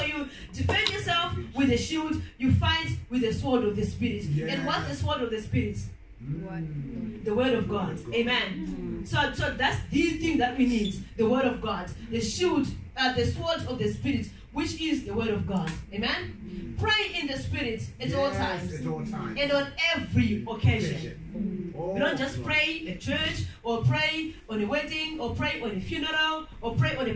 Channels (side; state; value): both; identical; correlation 1.00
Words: you defend yourself with a shield. You fight with the sword of the Spirit. And what's the sword of the Spirit? The word of God. Amen? So that's the thing that we need. The word of God. The shield, the sword of the Spirit, which is the word of God. Amen? Pray in the Spirit at all times. At all times. And on every occasion. We don't just pray at church, or pray on a wedding, or pray on a funeral, or pray on a